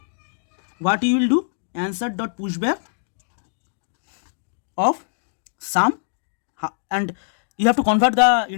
what you will do, answer dot pushback of sum, and you have to convert the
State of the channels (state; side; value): silent; right; digital silence